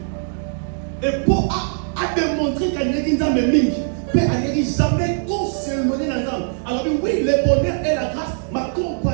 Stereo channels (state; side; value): silent; left; digital silence